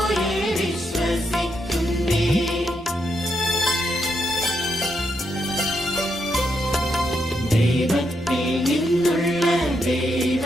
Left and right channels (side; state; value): both; normal; correlation 0.80